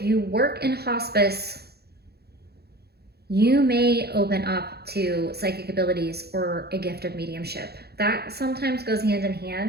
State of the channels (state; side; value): late; left; 0.46 ms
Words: you work in hospice, you may open up to psychic abilities or a gift of mediumship. That sometimes goes hand in